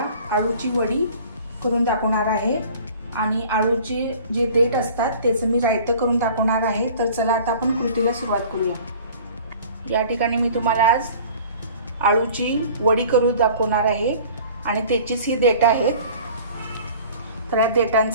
आळूची वडी करून दाखवणार आहे आणि आळूचे जे देठ असतात त्याचं मी रायतं करून दाखवणार आहे। तर चला आता आपण कृतीला सुरुवात करूया। या ठिकाणी मी तुम्हाला आज आळूची वडी करून दाखवणार आहे आणि त्याचीच ही देठ आहेत। तर या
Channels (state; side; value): inverted; both; correlation -0.46